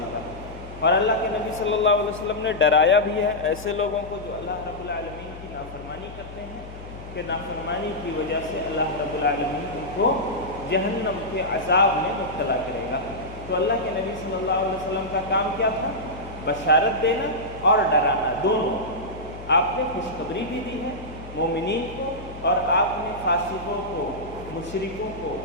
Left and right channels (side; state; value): left; noise; hum, 14 dB below the sound